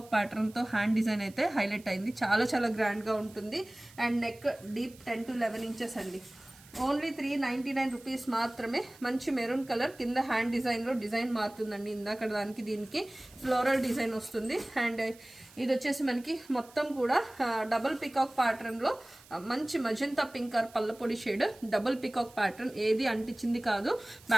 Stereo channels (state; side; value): noise; right; hiss, 24 dB below the sound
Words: ప్యాటర్న్తో హ్యాండ్ డిజైన్ అయితే హైలైట్ అయింది. చాలా గ్రాండ్గా ఉంటుంది. And neck deep 10 to 11 inches అండి. ఓన్లీ 399 రూపీస్ మాత్రమే. మంచి మెరూన్ కలర్, కింద హ్యాండ్ డిజైన్లో డిజైన్ మారుతుందండి. ఇందాక దానికి దీనికి ఫ్లోరల్ డిజైన్ వస్తుంది. అండ్ ఇది వచ్చేసి మనకి మొత్తం కూడా డబుల్ పికాక్ ప్యాటర్న్లో మంచి మజంతా పింక్ ఆర్ పల్లపొడి షేడ్, డబుల్ పికాక్ ప్యాటర్న్, ఏది అంటించింది కాదు.